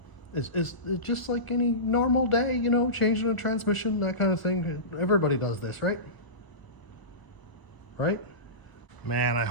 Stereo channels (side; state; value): right; late; 1.0 ms